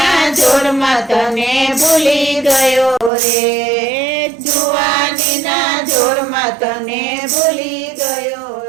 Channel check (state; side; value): drops out; left; at 3.1 s